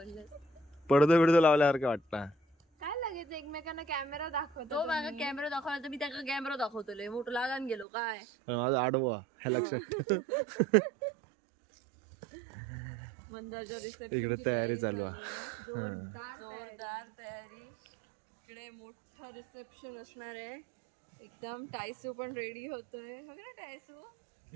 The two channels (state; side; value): drops out; left; at 7.9 s